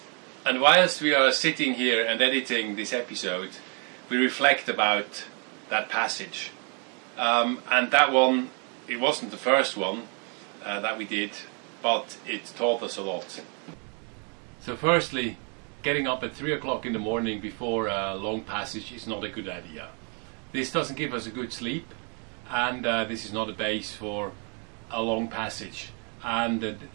And whilst we are sitting here and editing this episode, we reflect about that passage. And that one, it wasn't the first one that we did, but it taught us a lot. So firstly, getting up at 3 o'clock in the morning before a long passage is not a good idea. This doesn't give us a good sleep, and this is not a base for a long passage and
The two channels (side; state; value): left; quieter; 37.4 dB